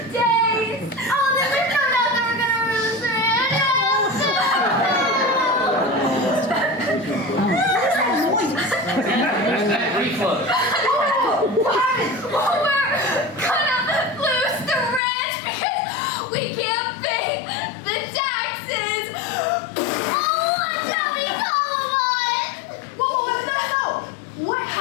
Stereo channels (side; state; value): right; drops out; at 15.0 s